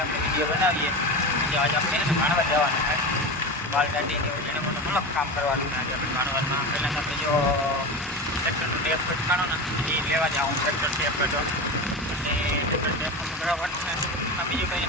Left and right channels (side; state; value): both; normal; correlation 0.24